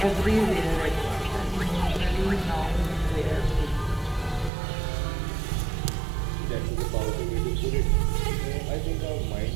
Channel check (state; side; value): drops out; left; at 4.5 s